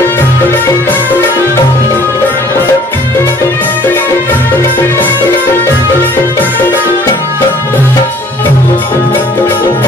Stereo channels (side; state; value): both; normal; correlation 0.55